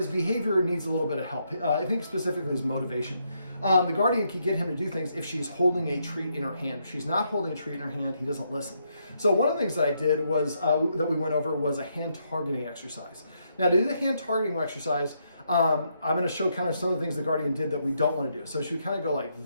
behavior needs a little bit of help. I think specifically his motivation. The guardian can get him to do things if she's holding a treat in her hand. If she's not holding a treat in her hand, he doesn't listen. So one of the things that I did was, that we went over, was a hand targeting exercise. Now to do the hand targeting exercise, I'm going to show kind of some of the things the guardian did that we don't want to do. So she would kind of go like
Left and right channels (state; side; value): inverted; both; correlation -0.77